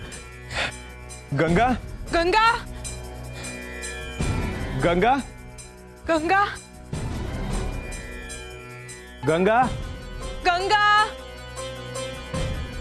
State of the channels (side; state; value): both; identical; correlation 1.00